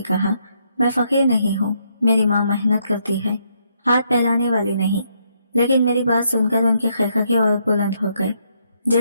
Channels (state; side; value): inverted; both; correlation -0.75